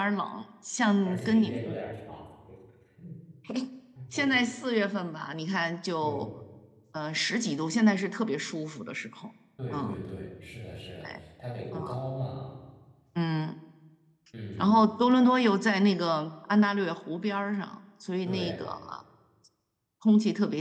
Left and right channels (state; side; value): identical; both; correlation 1.00